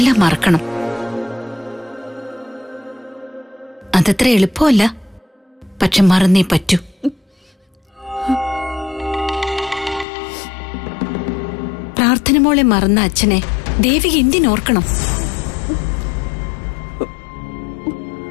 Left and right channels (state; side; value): drops out; right; at 10.1 s